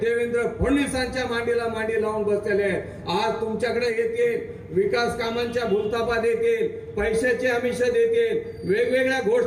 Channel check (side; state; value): both; identical; correlation 1.00